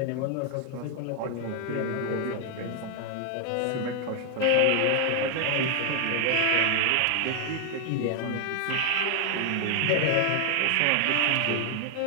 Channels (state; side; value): different; both; correlation 0.00